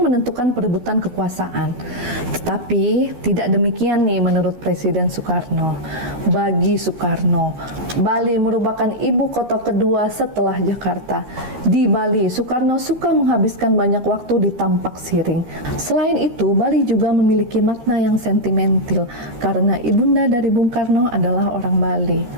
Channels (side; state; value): left; late; 13 ms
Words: menentukan perebutan kekuasaan. Tetapi tidak demikian nih menurut Presiden Soekarno. Bagi Soekarno, Bali merupakan ibu kota kedua setelah Jakarta. Di Bali, Soekarno suka menghabiskan banyak waktu di Tampak Siring. Selain itu, Bali juga memiliki makna yang sentimental karena ibunda dari Bung Karno adalah orang Bali.